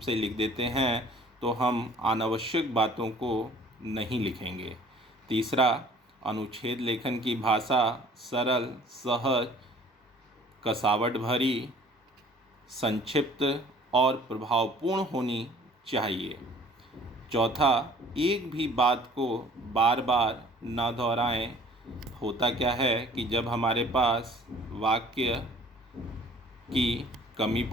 लिख देते हैं, तो हम अनावश्यक बातों को नहीं लिखेंगे। तीसरा, अनुच्छेद लेखन की भाषा सरल, सहज, कसावट भरी, संक्षिप्त और प्रभावपूर्ण होनी चाहिए। चौथा, एक भी बात को बार बार न दोहराएं। होता क्या है कि जब हमारे पास वाक्य की कमी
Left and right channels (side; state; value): both; normal; correlation 0.52